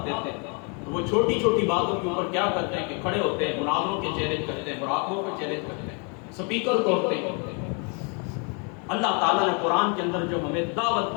دیتے ہیں، تو وہ چھوٹی چھوٹی باتوں کے اوپر کیا کرتے ہیں کہ کھڑے ہوتے ہیں، مناظروں کے چیلنج کرتے ہیں، مراقبوں کے چیلنج کرتے ہیں، سپیکر توڑتے ہیں۔ اللہ تعالیٰ نے قرآن کے اندر جو ہمیں دعوت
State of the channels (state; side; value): quieter; right; 35.9 dB